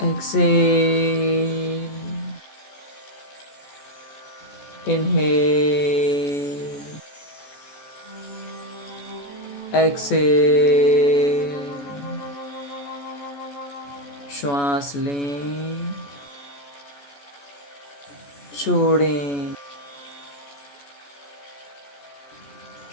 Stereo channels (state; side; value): late; right; 14 ms